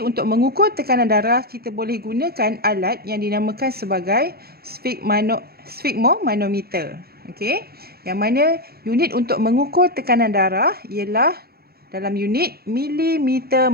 untuk mengukur tekanan darah, kita boleh gunakan alat yang dinamakan sebagai sfigmomanometer. Okey, yang mana unit untuk mengukur tekanan darah ialah dalam unit milimeter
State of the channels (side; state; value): left; late; 0.45 ms